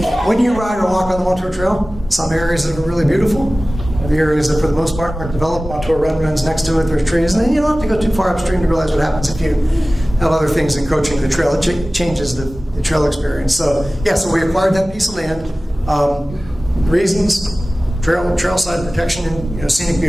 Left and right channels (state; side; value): normal; both; correlation 0.97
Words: when you ride or walk on the Montour Trail, some areas that are really beautiful, the areas that for the most part aren't developed. Montour Run runs next to it, there's trees, and then you don't have to go too far upstream to realize what happens if you have other things encroaching the trail. It changes the trail experience. So we acquired that piece of land. Reasons, trailside protection and scenic